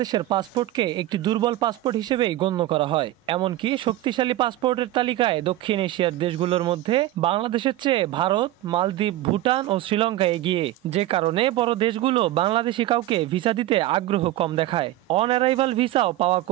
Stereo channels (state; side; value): quieter; left; 15.0 dB